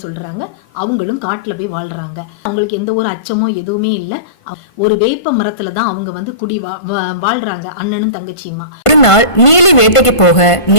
சொல்றாங்க. அவங்களும் காட்டில் போய் வாழ்றாங்க. அவங்களுக்கு எந்த ஒரு அச்சமோ எதுவுமே இல்லை. ஒரு வேப்ப மரத்துல தான் அவங்க வந்து குடி வாழ்றாங்க, அண்ணனும் தங்கச்சியுமா. ஒரு நாள் நீலி வேட்டைக்கு போக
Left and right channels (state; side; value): late; right; 1.5 ms